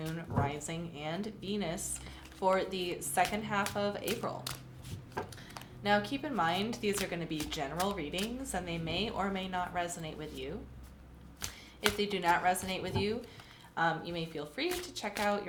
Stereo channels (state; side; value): identical; both; correlation 1.00